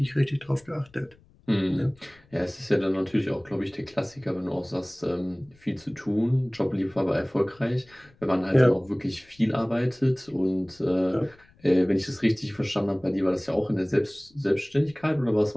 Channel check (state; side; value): noise; left; rumble, 29 dB below the sound